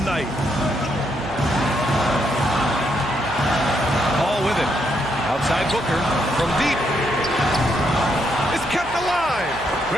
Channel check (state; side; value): noise; right; hum, 17 dB below the sound